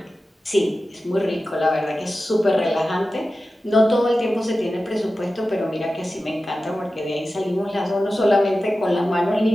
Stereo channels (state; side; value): normal; both; correlation 0.94